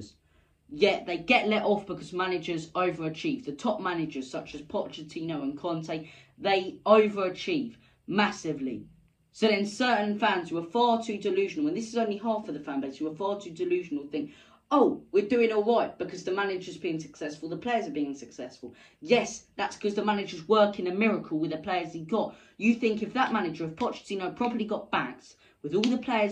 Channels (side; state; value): both; identical; correlation 1.00